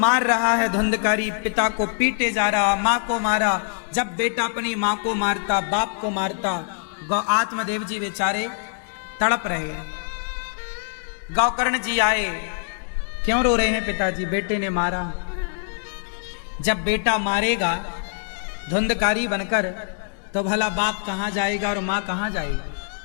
रहा है धुंधकारी, पिता को पीटे जा रहा, मां को मारा। जब बेटा अपनी मां को मारता, बाप को मारता, आत्मदेव जी बेचारे तड़प रहे हैं। गौकर्ण जी आए, क्यों रो रहे हैं पिताजी? बेटे ने मारा। जब बेटा मारेगा धुंधकारी बनकर तो भला बाप कहां जाएगा और मां कहां जाएगी?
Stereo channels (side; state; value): right; silent; digital silence